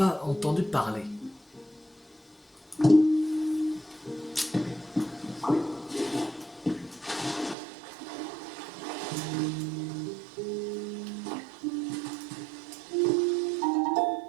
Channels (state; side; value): drops out; left; at 7.6 s